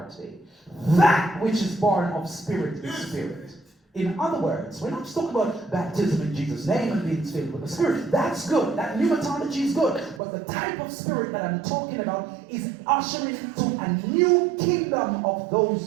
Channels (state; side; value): drops out; left; at 10.2 s